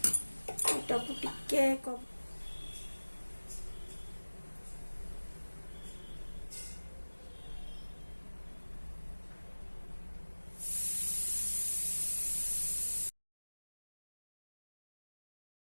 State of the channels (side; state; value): both; inverted; correlation -1.00